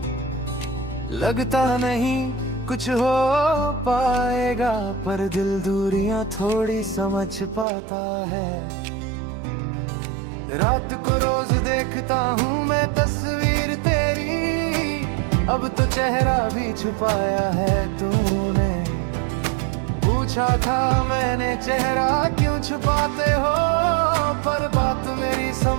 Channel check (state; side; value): drops out; left; at 7.7 s